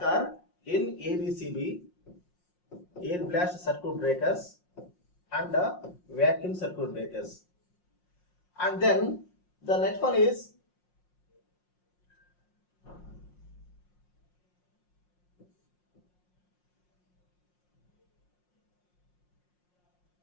in ABCB, air blast circuit breakers, and vacuum circuit breakers. And then the next one is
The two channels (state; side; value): late; right; 5.6 ms